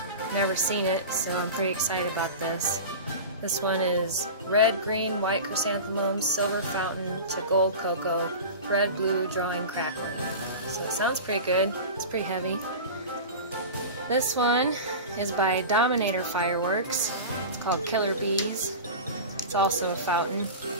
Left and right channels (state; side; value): inverted; both; correlation -0.30